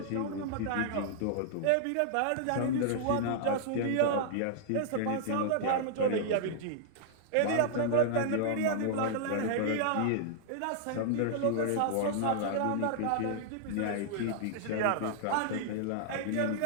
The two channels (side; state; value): both; different; correlation -0.01